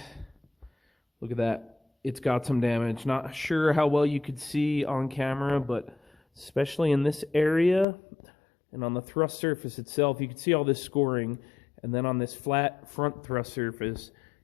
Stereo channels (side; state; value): right; drops out; at 7.9 s